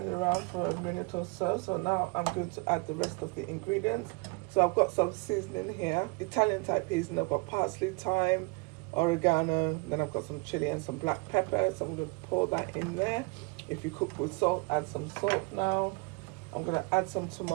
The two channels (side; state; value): left; quieter; 29.4 dB